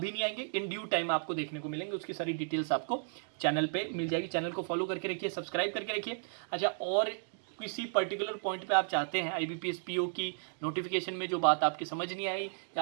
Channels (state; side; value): silent; left; digital silence